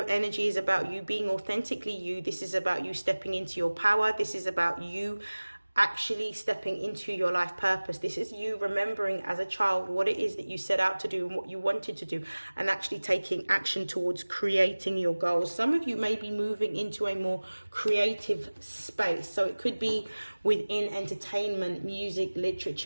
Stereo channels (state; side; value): inverted; both; correlation -1.00